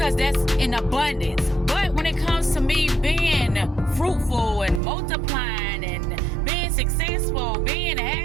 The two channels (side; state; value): left; drops out; at 4.8 s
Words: that's in abundance. But when it comes to me being fruitful and multiplying and being successful, being